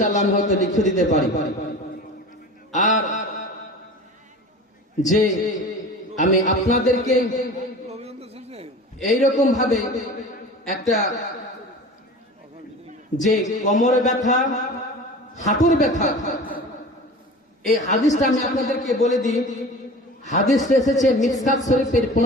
আমি হয়তো লিখে দিতে পারি। আর যে আমি আপনাদেরকে এইরকম ভাবে একটা যে কোমরে ব্যথা, হাঁটুর ব্যথা, এই হাদিসটা আমি আপনাদেরকে বলে দিই। হাদিস এসেছে মিসকাত শরীফের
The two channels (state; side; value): normal; both; correlation 0.37